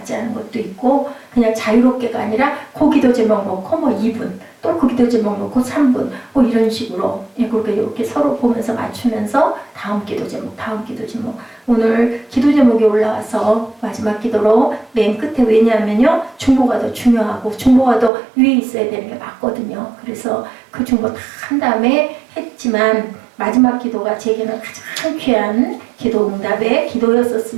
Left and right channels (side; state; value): left; drops out; at 18.1 s